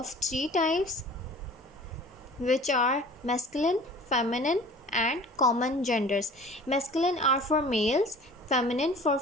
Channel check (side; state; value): both; normal; correlation 0.45